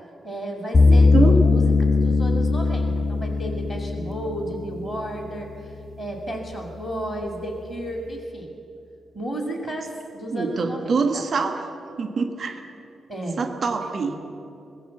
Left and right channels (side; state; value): both; normal; correlation 0.89